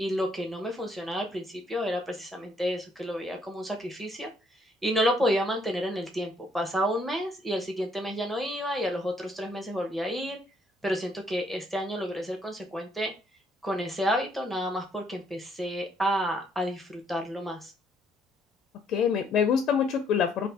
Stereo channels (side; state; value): both; normal; correlation 0.68